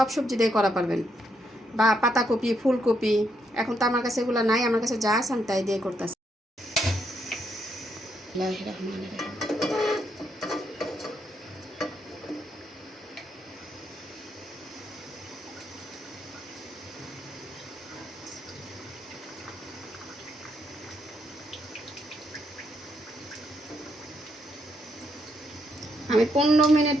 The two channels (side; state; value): both; normal; correlation 0.77